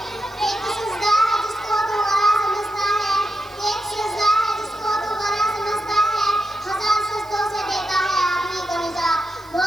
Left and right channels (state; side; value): noise; right; hiss, 27 dB below the sound